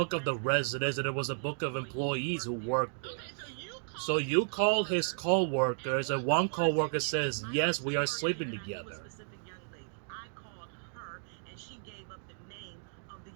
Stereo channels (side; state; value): left; silent; digital silence